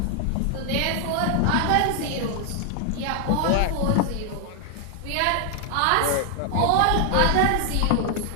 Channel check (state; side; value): different; both; correlation 0.00